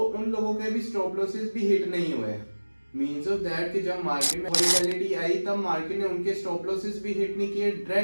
लोगों के भी स्टॉप लॉसेस भी हिट नहीं हुए। मीन्स ऑफ दैट कि जब मार्केट में वोलेटिलिटी आई तब मार्केट ने उनके स्टॉप लॉसेस भी हिट नहीं किए,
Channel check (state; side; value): inverted; both; correlation -1.00